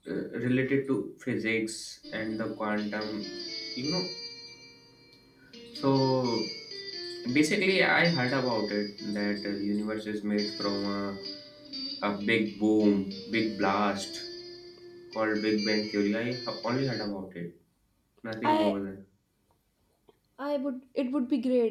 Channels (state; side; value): identical; both; correlation 1.00